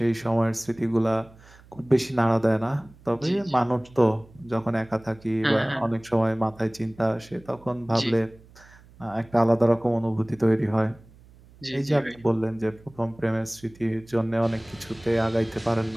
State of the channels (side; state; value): right; noise; hum, 25 dB below the sound